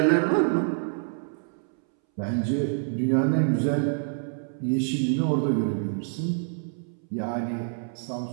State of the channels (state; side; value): silent; left; 60 dB below the other